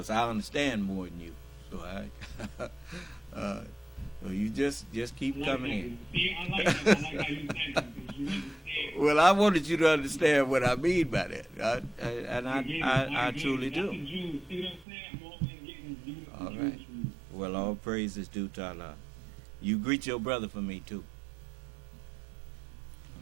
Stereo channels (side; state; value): left; drops out; at 14.9 s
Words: I understand more than you. So well, you just keep coming in. See, I like that. I like how you said that, because you understand. Well, I wanted you to understand what I mean by that, I truly do. All right. Well, all praise is due to Allah. You greet your brother for me too.